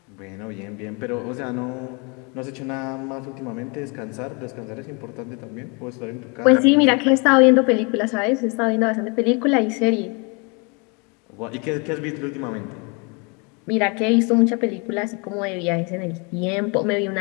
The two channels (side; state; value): right; quieter; 32.0 dB